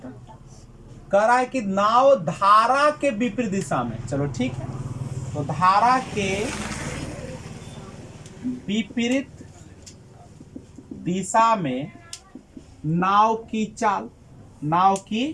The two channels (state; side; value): identical; both; correlation 1.00